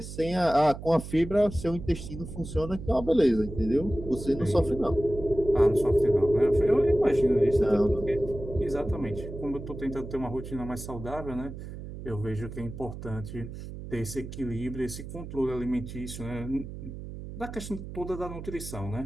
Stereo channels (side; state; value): right; noise; hum, 10 dB below the sound